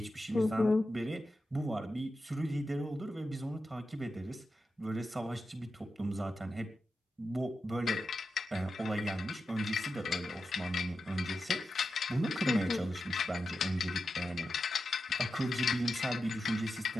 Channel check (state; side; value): normal; both; correlation 0.90